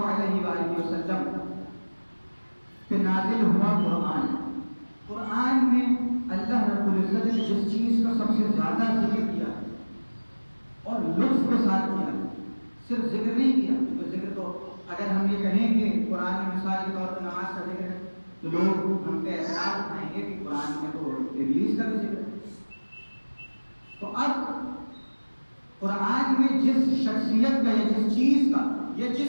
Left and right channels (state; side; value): inverted; both; correlation -1.00